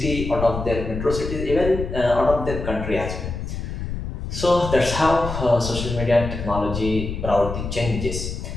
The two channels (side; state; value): left; noise; rumble, 6 dB below the sound